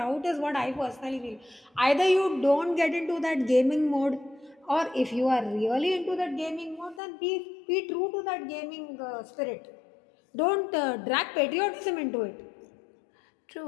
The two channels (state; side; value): drops out; right; at 7.0 s